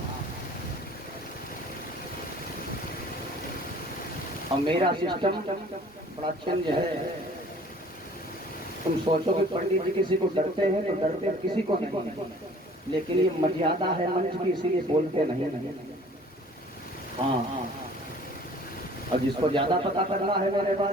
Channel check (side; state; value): both; normal; correlation 0.51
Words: और मेरा सिस्टम बड़ा चेंज है। तुम सोचो कि पंडित जी किसी को डरते हैं तो डरते किसी को नहीं, लेकिन ये मर्यादा है मंच की, इसीलिए बोलते नहीं। हाँ, और जिसको ज्यादा पता करना है मेरे